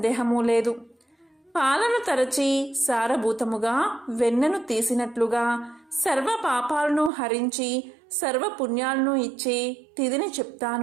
లేదు. పాలను తరచి సారభూతముగా వెన్నను తీసినట్లుగా సర్వ పాపాలను హరించి సర్వ పుణ్యాలను ఇచ్చే తిథిని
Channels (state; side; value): drops out; left; at 7.1 s